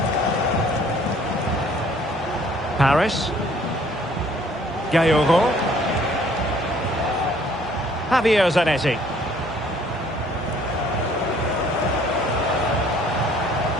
Paris. Gaillero. Javier Zanetti.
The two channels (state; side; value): normal; both; correlation 0.59